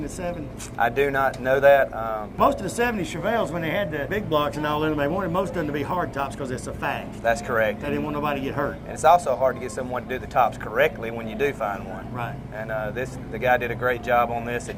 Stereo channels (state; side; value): identical; both; correlation 1.00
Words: the 70s? I do not know that. Most of the 70 Chevelles, when they had the big blocks and all in them, they wanted most of them to be hard tops because it's a fact. That's correct. They didn't want nobody to get hurt. And it's also hard to get someone to do the tops correctly when you do find one. Right. And the guy did a great job on this. It